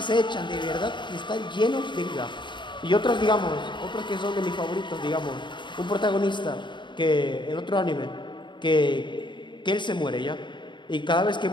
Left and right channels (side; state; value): right; late; 0.23 ms